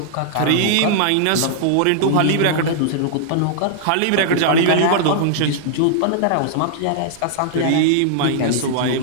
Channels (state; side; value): different; both; correlation -0.01